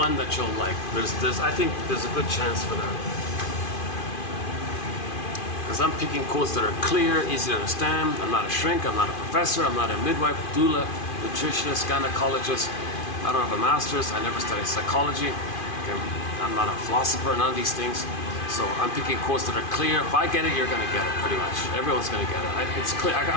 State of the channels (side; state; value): right; late; 2.5 ms